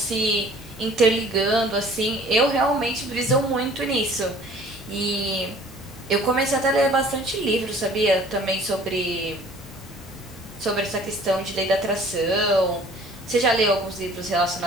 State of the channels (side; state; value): both; normal; correlation 0.52